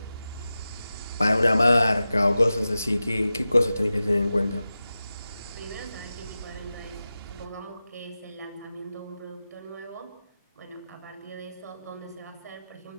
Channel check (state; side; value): inverted; both; correlation -0.94